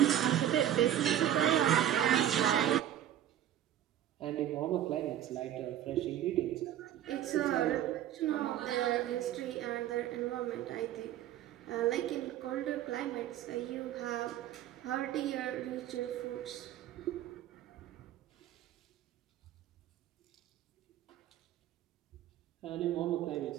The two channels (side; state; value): left; quieter; 11.5 dB